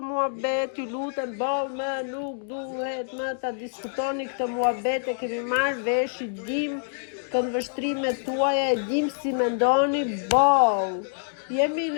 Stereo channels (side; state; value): right; silent; digital silence